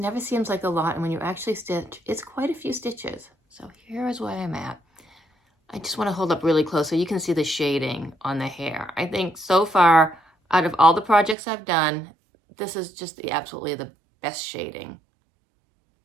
seems like a lot. And when you actually stitch, it's quite a few stitches. So here is where I'm at. I just want to hold up really close so you can see the shading on the hair. I think so far, out of all the projects I've done, this is just absolutely the best shading.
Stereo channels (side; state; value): left; drops out; at 11.4 s